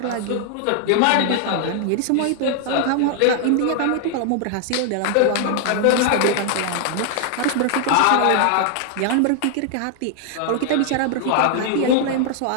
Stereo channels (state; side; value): different; both; correlation 0.00